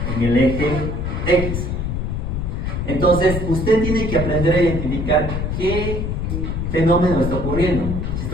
en el eje X. Entonces, usted tiene que aprender a identificar qué fenómeno está ocurriendo. Si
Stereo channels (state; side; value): noise; left; rumble, 2 dB below the sound